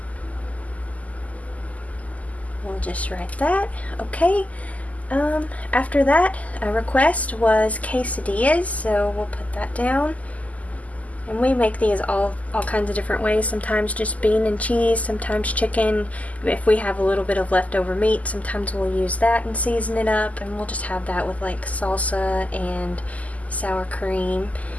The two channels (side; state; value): right; late; 0.073 ms